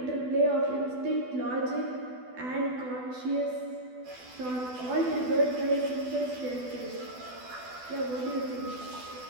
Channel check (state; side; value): late; left; 12 ms